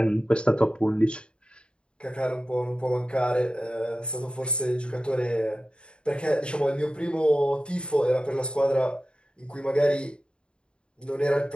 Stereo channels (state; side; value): late; right; 0.053 ms